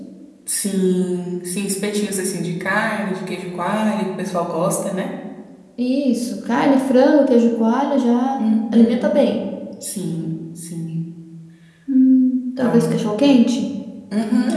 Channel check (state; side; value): identical; both; correlation 1.00